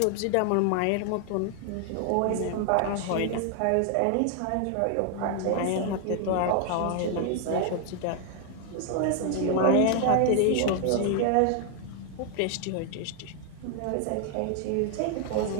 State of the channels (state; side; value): different; both; correlation 0.00